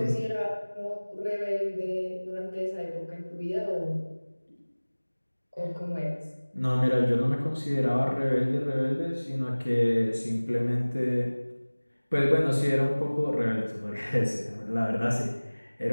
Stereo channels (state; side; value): inverted; both; correlation -1.00